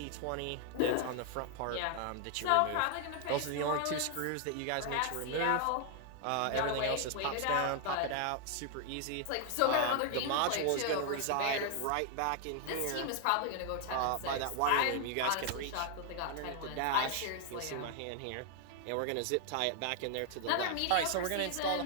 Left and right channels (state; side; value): different; both; correlation 0.00